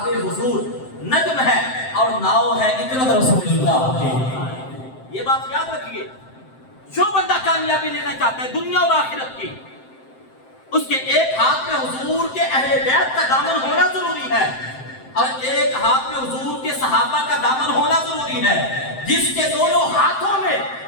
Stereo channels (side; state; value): right; late; 7.7 ms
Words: हुजूर नज्म है और नाव है इतरत रसूलुल्लाह की। ये बात याद रखिए, जो बंदा कामयाबी लेना चाहता है दुनिया और आखिरत की, उसके एक हाथ में हुजूर के अहले बैत का दामन होना जरूरी है, और एक हाथ में हुजूर के सहाबा का दामन होना जरूरी है। जिसके दोनों हाथों में